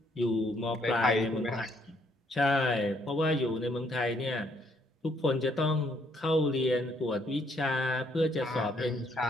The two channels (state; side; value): normal; both; correlation 0.69